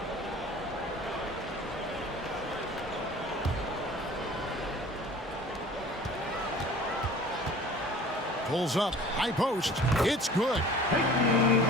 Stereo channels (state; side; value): normal; both; correlation 0.45